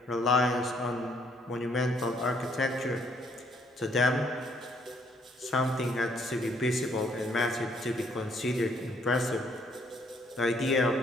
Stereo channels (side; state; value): both; normal; correlation 0.67